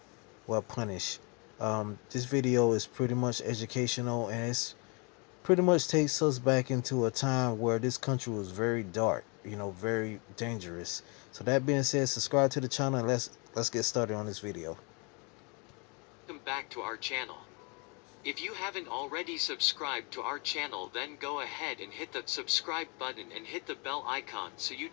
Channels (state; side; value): quieter; right; 32.2 dB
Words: Well, punish. This video is pretty much educational, and it's pretty much takes us back into a time where this country was very dark, very dangerous. So that being said, subscribe to the channel and let's get started on this video. Welcome back to our channel. If you haven't already subscribed to our channel, then go ahead and hit the subscribe button and hit the bell icon so you